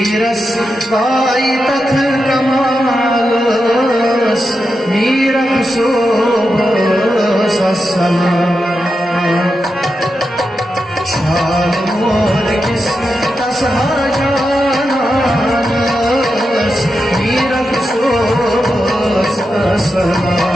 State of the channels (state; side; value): normal; both; correlation 0.88